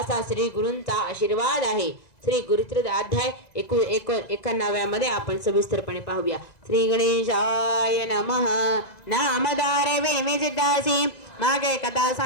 श्री गुरूंचा आशीर्वाद आहे. श्री गुरुचरित्र अध्याय 91 मध्ये आपण सविस्तरपणे पाहूया. श्री गणेशाय नमः. नामदार वेमी सिद्धासी, मागे कथा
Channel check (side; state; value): right; late; 1.9 ms